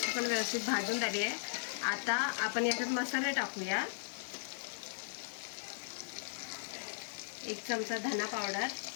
पण व्यवस्थित भाजून झाली आहे. आता आपण याच्यात मसाले टाकूया. 1 चमचा धना पावडर,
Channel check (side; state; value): right; silent; digital silence